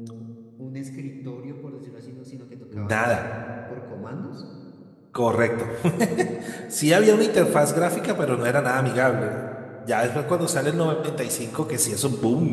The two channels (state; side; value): identical; both; correlation 1.00